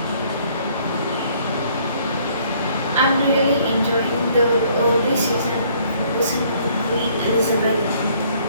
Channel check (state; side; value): inverted; both; correlation -0.62